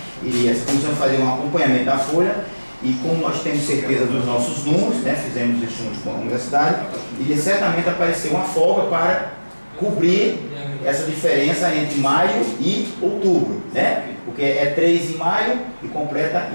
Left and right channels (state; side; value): inverted; both; correlation -1.00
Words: e essa comissão fazer um acompanhamento da folha. E como nós temos certeza dos nossos números, né, fizemos estudos com a universidade, e certamente apareceu uma folga para cobrir essa diferença entre maio e outubro, né? Porque é 3 em maio e completa